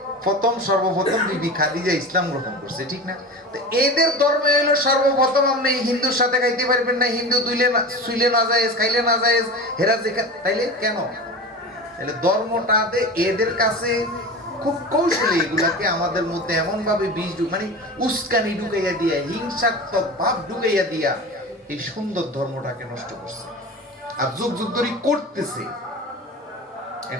সর্বপ্রথম বিবি খাদিজা ইসলাম গ্রহণ করছে, ঠিক না? তো এদের ধর্মে হলো সর্বপ্রথম আপনি হিন্দুর সাথে খাইতে পারবেন না, হিন্দু শুইলে না যায়, খাইলে না যায়, হেরা তাইলে কেন? তাহলে ধর্মটাতে এদের কাছে খুব কৌশলী এগুলাকে আমাদের মধ্যে এমন ভাবে মানে উস্কানি ঢুকাইয়া দিয়া, হিংসাত্মক ভাব ঢুকাইয়া দিয়া এই সুন্দর ধর্মটাকে নষ্ট করছে, আর যুগ যুগ ধরে করতেছে।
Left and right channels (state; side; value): normal; both; correlation 0.30